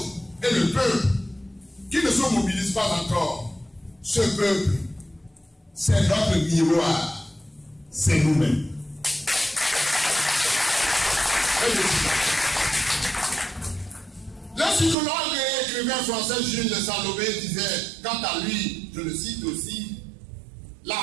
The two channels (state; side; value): drops out; left; at 15.0 s